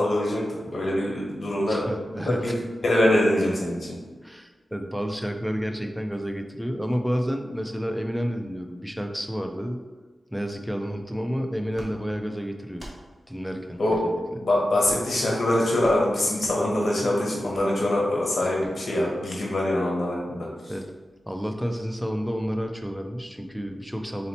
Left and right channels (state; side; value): normal; both; correlation 0.93